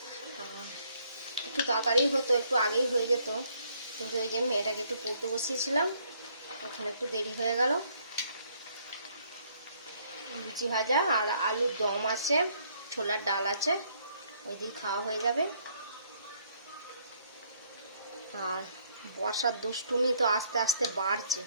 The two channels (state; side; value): inverted; both; correlation -0.67